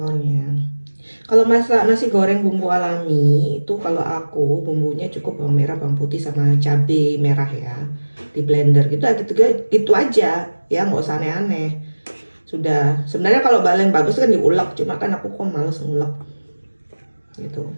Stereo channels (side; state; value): both; inverted; correlation -1.00